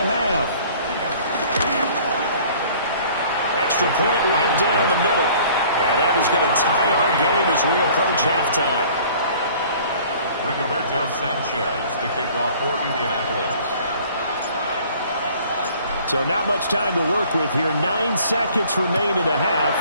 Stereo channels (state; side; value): inverted; both; correlation -0.52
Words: half. Extra point right down the middle. And that is going to tie our game as we approach halftime. Rigoberto Sanchez to kick off for Indianapolis. So not much time to work with here. 9 seconds remain in the half